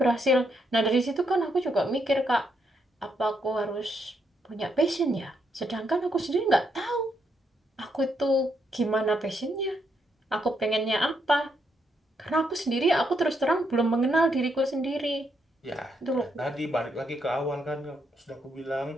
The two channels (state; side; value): normal; both; correlation 0.77